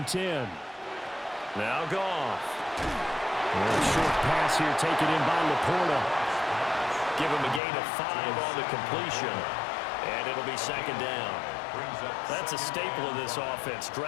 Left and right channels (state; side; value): drops out; right; at 7.6 s